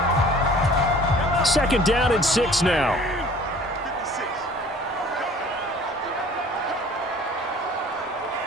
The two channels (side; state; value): both; normal; correlation 0.49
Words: 2nd down and 6 now.